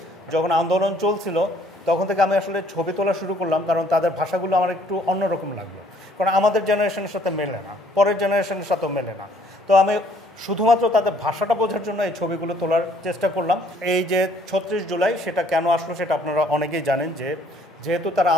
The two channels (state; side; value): normal; both; correlation 0.61